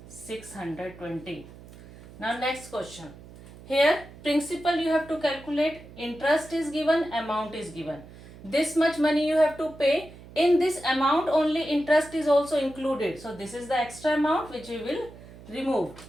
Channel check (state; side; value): noise; right; hum, 19 dB below the sound